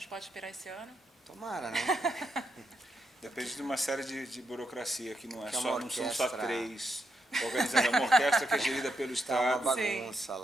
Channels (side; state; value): both; normal; correlation 0.81